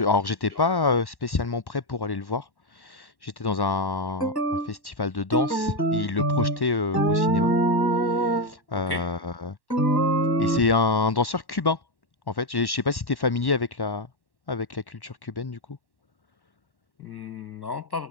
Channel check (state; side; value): late; right; 1.1 ms